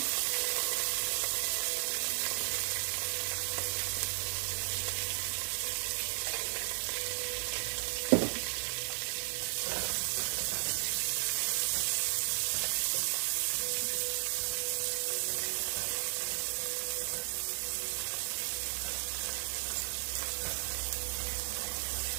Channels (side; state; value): left; silent; 55 dB below the other